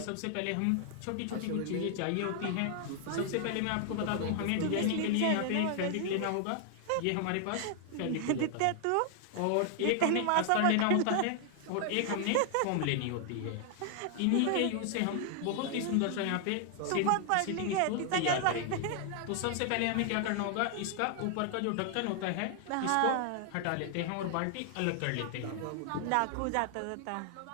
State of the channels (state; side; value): different; both; correlation 0.00